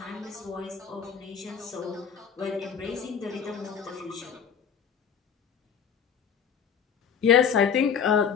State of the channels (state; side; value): quieter; right; 7.3 dB